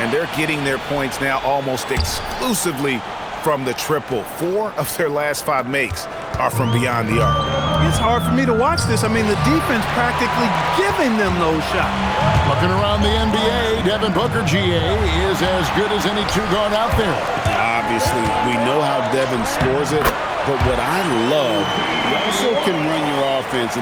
they're getting their points now almost exclusively from the triple. 4 of their last 5 makes are from beyond the arc. It's hard for me to watch this. I mean, the defense practically giving them those shots. Looking around the NBA, Devin Booker, GA, is as good as any 2-guard out there. Obviously, we know how Devin scores it, but what I love, he also can run your offense,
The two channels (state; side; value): identical; both; correlation 1.00